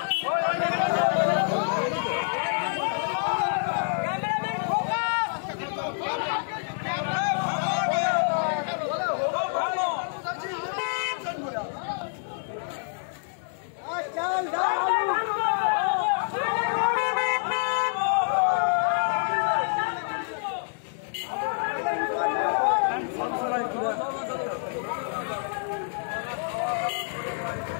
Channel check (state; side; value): silent; right; digital silence